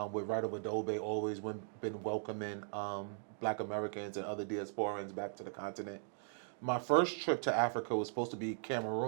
with Right Over Dobe, always been welcoming Black Americans and other diasporans back to the continent. My first trip to Africa was supposed to be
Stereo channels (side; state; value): left; silent; digital silence